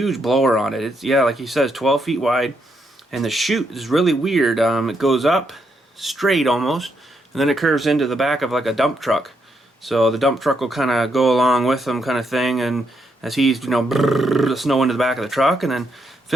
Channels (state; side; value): normal; both; correlation 0.78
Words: blower on it. It's, yeah, like he says, 12 feet wide. And the chute is really weird. It goes up straight almost, and then it curves into the back of like a dump truck. So the dump truck will kind of go along with them, kind of thing. And as he's, you know, the snow into the back of the truck, and then